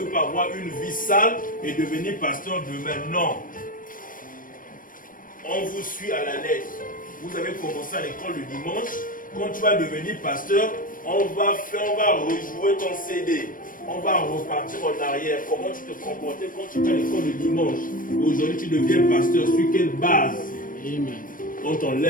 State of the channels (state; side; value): late; right; 0.40 ms